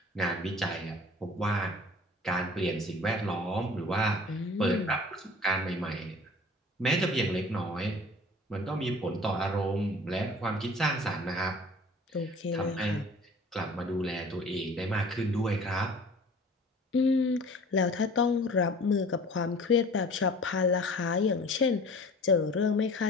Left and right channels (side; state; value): both; normal; correlation 0.46